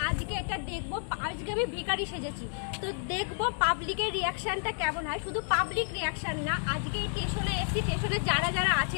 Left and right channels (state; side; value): silent; right; 57 dB below the other